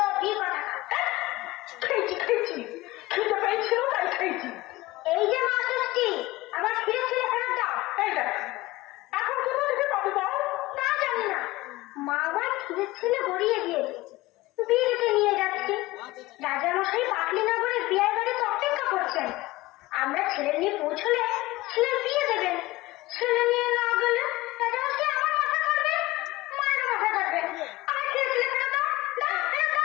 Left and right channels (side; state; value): right; quieter; 19.4 dB